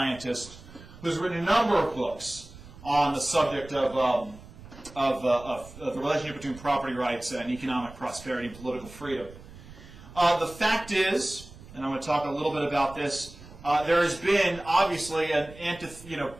who's written a number of books on the subject of of the relationship between property rights and economic prosperity and political freedom. The fact is, and I'm going to talk a little bit about this, there has been obviously an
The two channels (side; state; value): right; noise; rumble, 18 dB below the sound